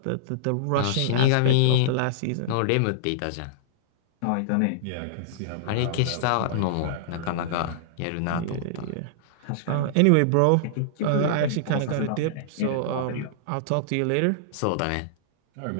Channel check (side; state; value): both; different; correlation -0.02